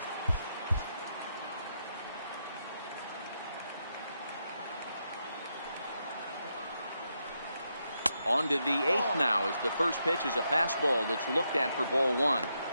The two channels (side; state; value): both; inverted; correlation -0.82